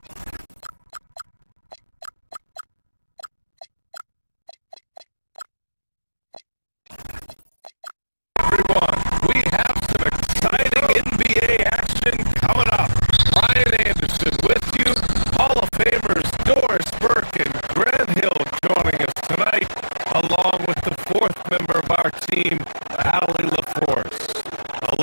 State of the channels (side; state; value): both; inverted; correlation -1.00